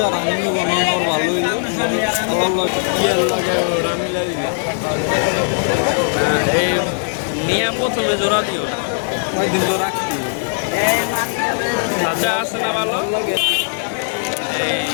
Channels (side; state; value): right; silent; digital silence